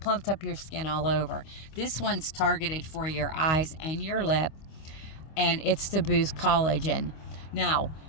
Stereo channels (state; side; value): late; right; 25 ms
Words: up your skin all over. This one's targeted for your eyes and your lip, and it's to boost collagen. Now,